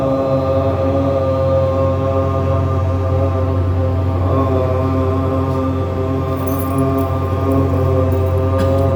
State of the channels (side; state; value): both; identical; correlation 1.00